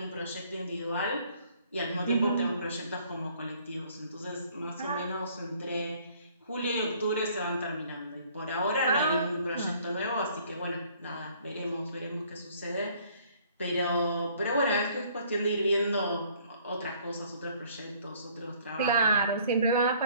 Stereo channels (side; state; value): both; inverted; correlation -0.59